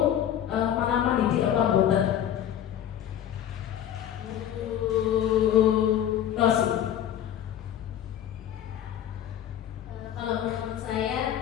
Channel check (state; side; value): quieter; right; 10.5 dB